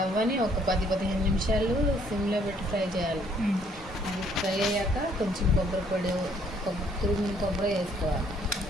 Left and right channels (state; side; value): normal; both; correlation 0.64